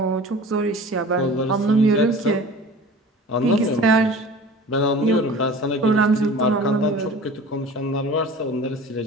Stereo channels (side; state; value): both; normal; correlation 0.40